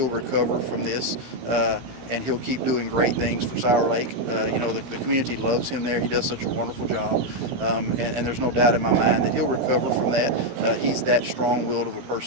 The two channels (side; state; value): left; late; 17 ms